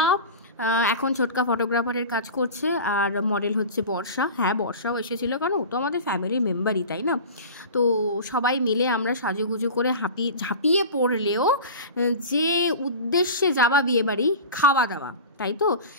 এখন ছোটকা ফটোগ্রাফারের কাজ করছে, আর মডেল হচ্ছে বর্ষা। হ্যাঁ, বর্ষাও এসেছিলো, কারণ ও তো আমাদের ফ্যামিলির মেম্বারই, তাই না? তো সবাই মিলে আমরা সাজুগুজু করে ঝাঁপিয়ে পড়লেও যে উদ্দেশ্যে যাওয়া বিয়েবাড়ি, খাওয়া দাওয়া, তাই তো,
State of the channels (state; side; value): inverted; both; correlation -0.33